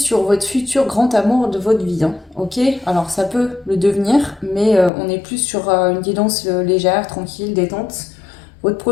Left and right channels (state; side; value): drops out; right; at 4.9 s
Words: votre futur grand amour de votre vie, hein, ok? Alors ça peut le devenir, mais on est plus sur une guidance légère, tranquille, détente. Votre